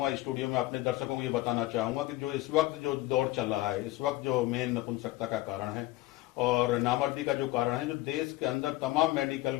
स्टूडियो में अपने दर्शकों को ये बताना चाहूँगा कि जो इस वक्त जो दौर चल रहा है, इस वक्त जो मेन नपुंसकता का कारण है और नामर्दी का जो कारण है, जो देश के अंदर तमाम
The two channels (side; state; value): right; quieter; 17.7 dB